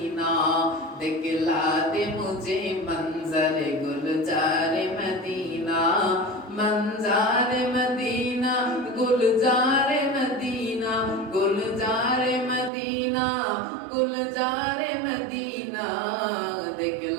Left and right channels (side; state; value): left; drops out; at 12.7 s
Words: दिखला दे मुझे मंजर गुलजार मदीना, मंजार मदीना गुलजार मदीना, गुलजार मदीना गुलजार मदीना,